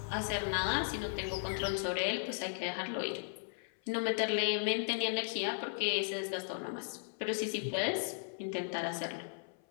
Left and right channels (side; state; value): right; silent; 54 dB below the other